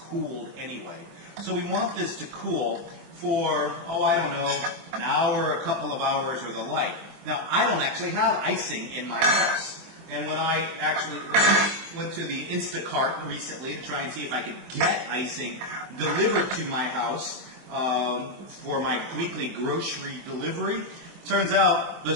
anyway. So we want this to cool for, I don't know, an hour, a couple of hours, or the like. Now, I don't actually have icing in my house. And when I actually went to the Instacart recently to try and see if I could get icing delivered to my house for my weekly grocery delivery, turns out the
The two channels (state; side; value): late; left; 24 ms